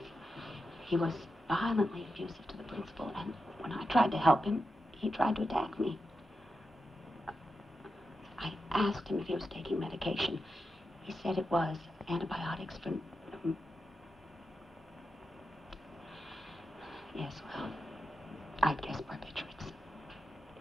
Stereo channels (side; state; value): both; normal; correlation 0.89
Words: He was violently abusive to the principal, and when I tried to help him, he tried to attack me. I asked him if he was taking medication. He said it was antibiotics for... Yes, well, I guess barbiturates.